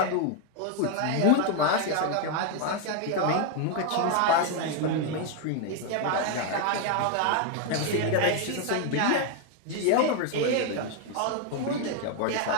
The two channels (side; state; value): both; different; correlation 0.01